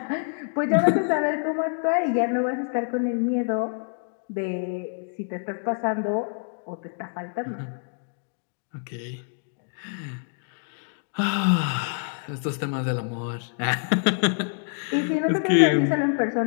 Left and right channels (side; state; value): right; silent; 61 dB below the other